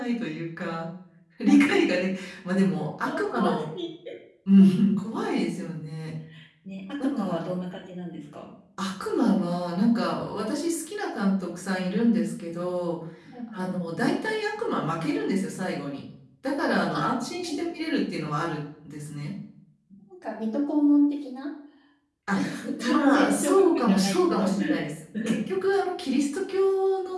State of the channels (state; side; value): identical; both; correlation 1.00